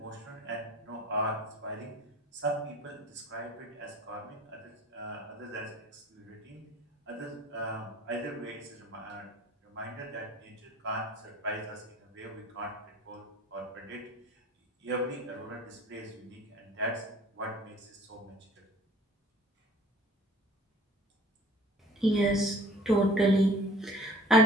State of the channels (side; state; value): both; normal; correlation 0.48